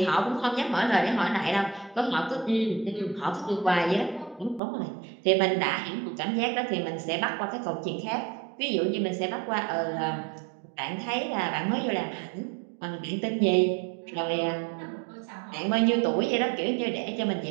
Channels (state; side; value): drops out; left; at 4.6 s